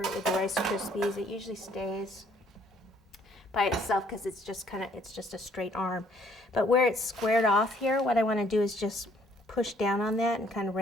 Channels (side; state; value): both; normal; correlation 0.64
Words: it with the Rice Krispies. It usually stays by itself because it's just a straight arm. But where it's squared off here, what I want to do is just push down on that and kind of